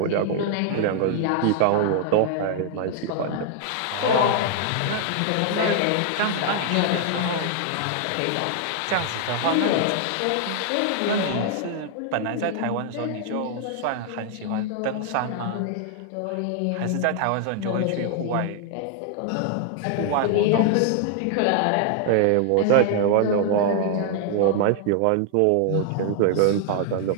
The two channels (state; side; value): different; both; correlation 0.00